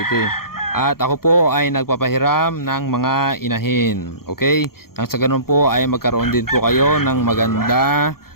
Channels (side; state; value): right; late; 0.93 ms